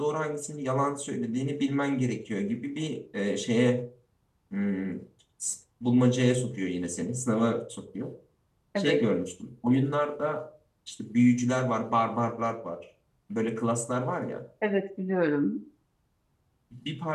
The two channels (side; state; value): both; identical; correlation 1.00